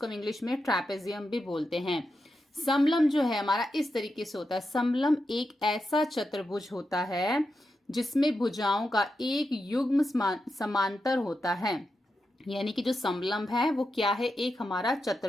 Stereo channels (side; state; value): both; normal; correlation 0.88